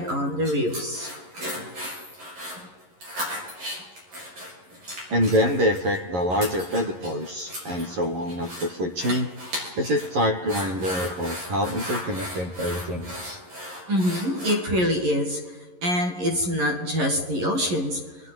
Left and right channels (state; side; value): late; left; 11 ms